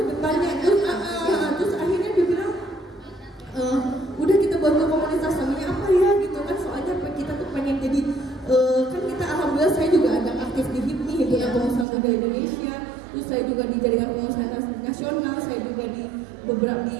depannya. Terus akhirnya dia bilang udah kita bantu komunitas, namanya apa ya gitu kan, soalnya kita tuh pengen jadi kan kita alhamdulillah saya juga ada aktif di saya juga di jaringan pengusaha nasional, saya juga di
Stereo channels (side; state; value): left; drops out; at 11.9 s